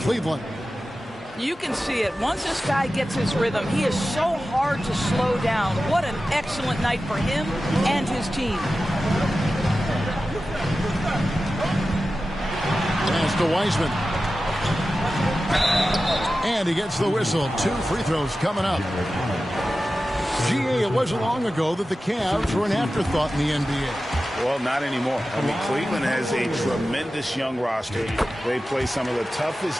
You can see it. Once this guy gets his rhythm, he is so hard to slow down. What an excellent night for him and his team. Pass to Wiseman. And he gets the whistle. 2 free throws coming up. GA, it wasn't long ago that the Cavs were an afterthought in the NBA. Well, not anymore. I mean, Cleveland has a tremendous young roster. They play some of the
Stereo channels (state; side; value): normal; both; correlation 0.94